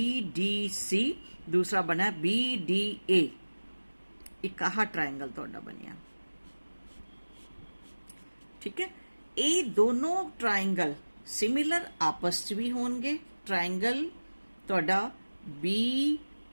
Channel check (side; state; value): both; inverted; correlation -1.00